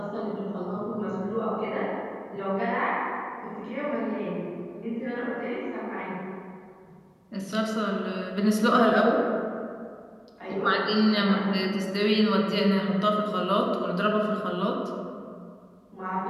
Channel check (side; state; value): both; identical; correlation 1.00